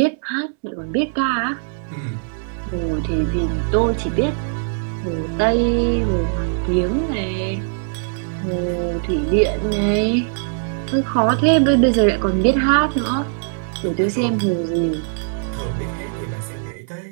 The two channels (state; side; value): silent; left; digital silence